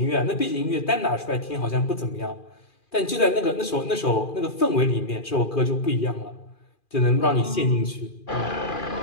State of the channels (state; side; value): late; right; 2.4 ms